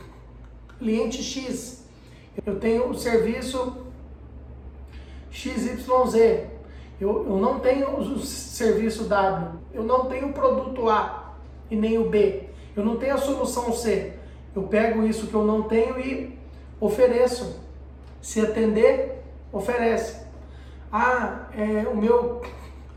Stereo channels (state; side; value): identical; both; correlation 1.00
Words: cliente X, eu tenho o serviço XYZ, eu não tenho o serviço W, eu não tenho o produto A e nem o B, eu não tenho a solução C. Eu pego isso que eu não tenho e ofereço. Se atender, oferece. O meu